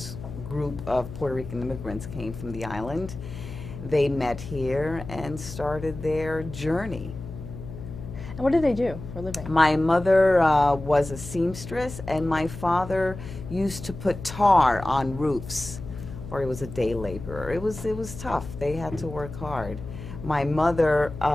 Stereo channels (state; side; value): noise; left; hum, 11 dB below the sound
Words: group of Puerto Rican immigrants came from the island. They met here and started their journey. And what did they do for a living? My mother was a seamstress, and my father used to put tar on roofs, or he was a day laborer. It was tough. They had to work hard. My mother